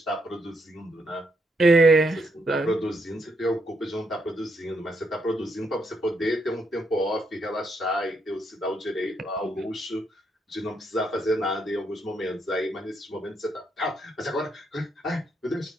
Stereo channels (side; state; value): both; normal; correlation 0.77